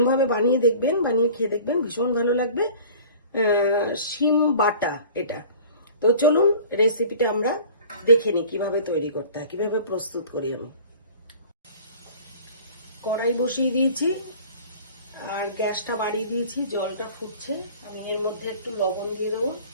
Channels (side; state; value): both; inverted; correlation -0.45